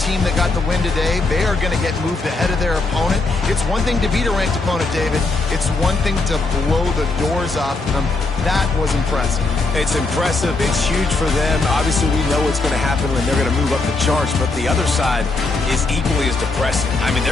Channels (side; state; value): right; quieter; 3.5 dB